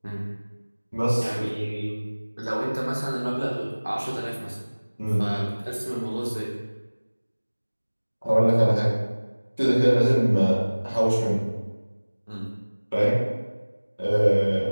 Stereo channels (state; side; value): inverted; both; correlation -1.00